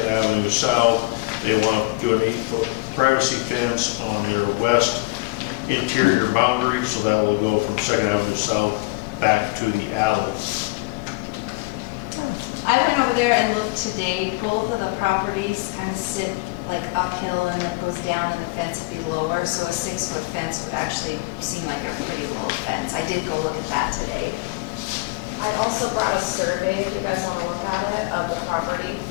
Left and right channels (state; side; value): quieter; right; 24.8 dB